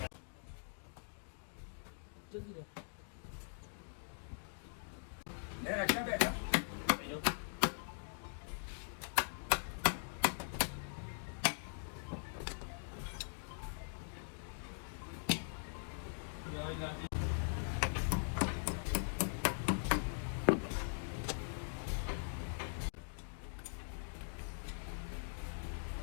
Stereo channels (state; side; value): silent; right; digital silence